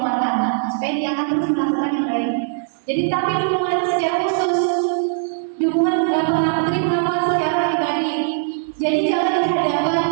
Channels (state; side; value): silent; left; digital silence